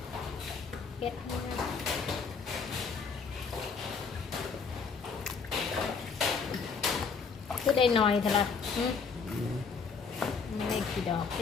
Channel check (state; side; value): quieter; right; 5.3 dB